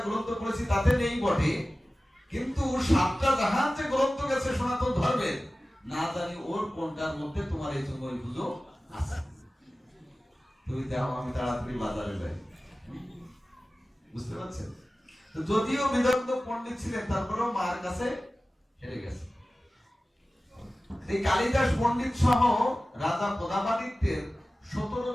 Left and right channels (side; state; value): both; normal; correlation 0.96